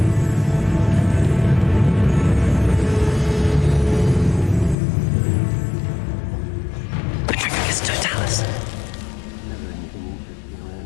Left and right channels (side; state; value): right; drops out; at 4.8 s